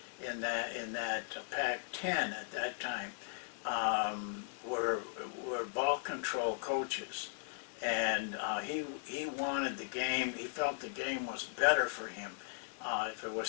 in that Pac-10 at that time, were ball control coaches. And he wanted the game, he felt the game was better for him if it was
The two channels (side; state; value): right; silent; 53 dB below the other